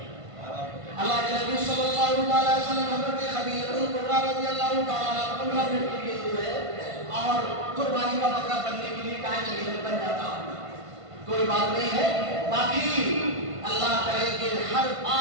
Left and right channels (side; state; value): left; late; 1.5 ms